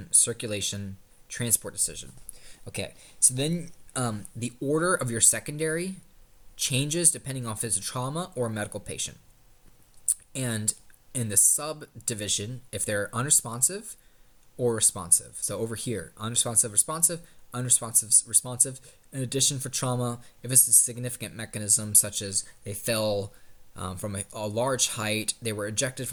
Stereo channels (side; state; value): both; identical; correlation 1.00